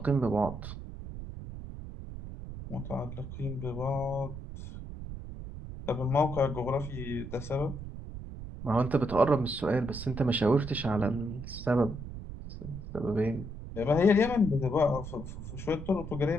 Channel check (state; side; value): noise; right; rumble, 10 dB below the sound